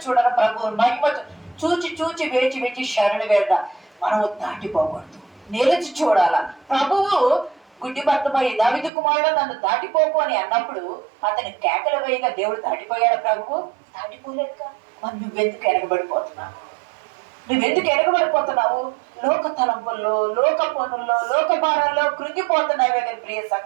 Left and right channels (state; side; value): drops out; left; at 8.9 s